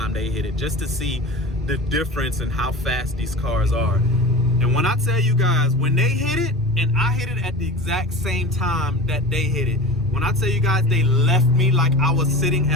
they hit it, just to see the difference in how fast these cars are. And when I tell you guys, when they hit it and I hit it at the exact same time that they hit it, when I tell you guys they left me like I was sitting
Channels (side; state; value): both; normal; correlation 0.33